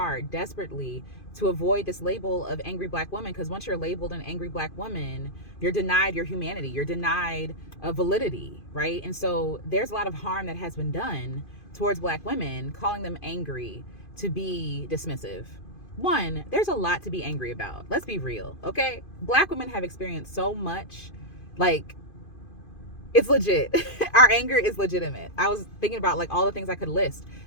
desperately, to avoid this label of angry black woman. Because once you're labeled an angry black woman, you're denied your humanity, you're denied validity, right? And so there's a lot of harm that has been done towards black women, calling them angry to be dismissive. One, there's a lot to be angry about. Let's be real, okay? Black women have experienced so much, like, it's legit. Our anger is legitimate. I was thinking about like all the things I could list.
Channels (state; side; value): late; right; 2.5 ms